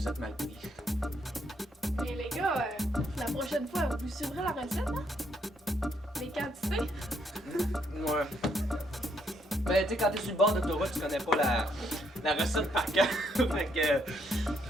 êtes mal pris. Et les gars, la prochaine fois, vous suivrez la recette, hein? Les quantités? Ouais. Ben, tu sais, quand t'es sur le bord d'autoroute, tu connais pas la recette par cœur.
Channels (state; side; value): normal; both; correlation 0.73